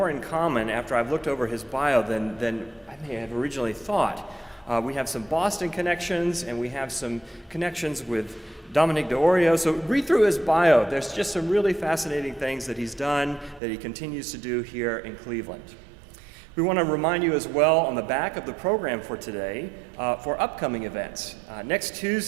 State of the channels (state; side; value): drops out; left; at 13.6 s